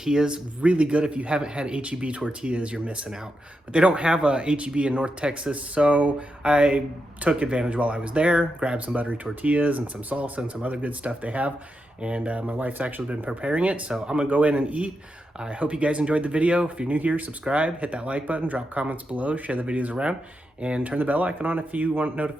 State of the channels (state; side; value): normal; both; correlation 0.86